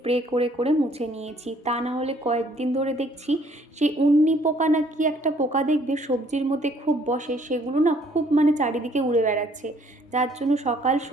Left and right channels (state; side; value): normal; both; correlation 0.62